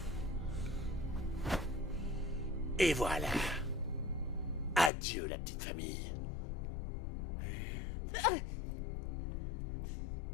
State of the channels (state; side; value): drops out; right; at 4.9 s